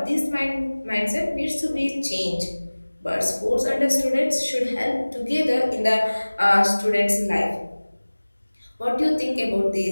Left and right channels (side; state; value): both; inverted; correlation -1.00